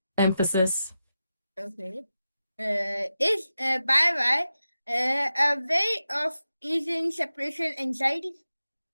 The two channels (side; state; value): both; inverted; correlation -0.91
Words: Emphasis. Okay, is bye bye a way of easing separation anxiety?